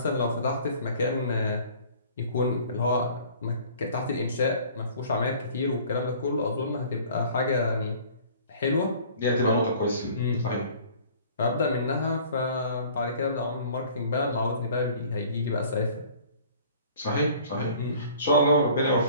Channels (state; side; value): inverted; both; correlation -0.50